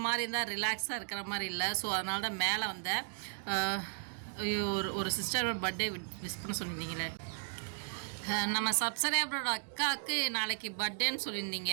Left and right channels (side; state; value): left; silent; digital silence